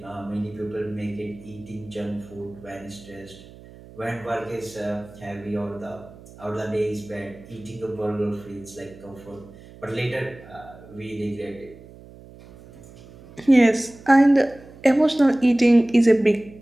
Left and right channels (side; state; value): right; noise; hum, 20 dB below the sound